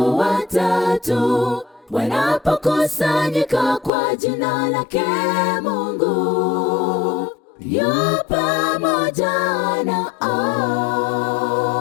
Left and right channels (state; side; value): drops out; right; at 3.9 s